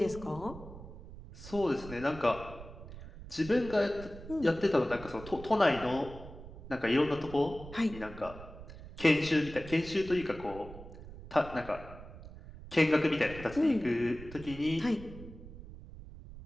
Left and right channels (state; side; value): noise; right; rumble, 14 dB below the sound